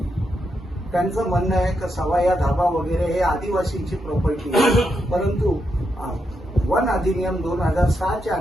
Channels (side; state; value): both; normal; correlation 0.83